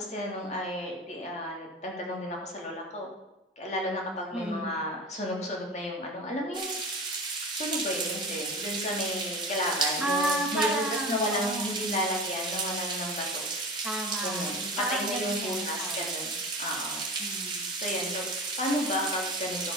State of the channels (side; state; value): both; normal; correlation 0.31